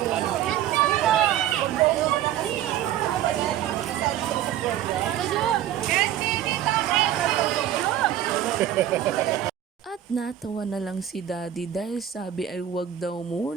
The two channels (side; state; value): left; quieter; 11.4 dB